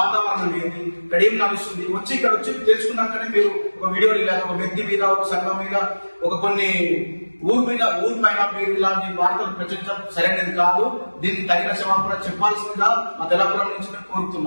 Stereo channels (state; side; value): inverted; both; correlation -1.00